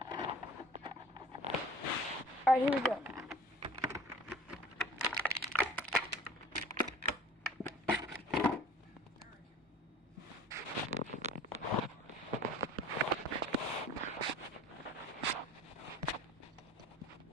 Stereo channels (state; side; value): normal; both; correlation 0.44